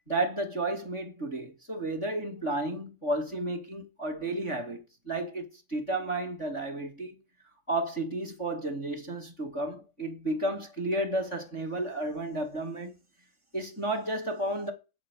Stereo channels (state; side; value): late; right; 3.5 ms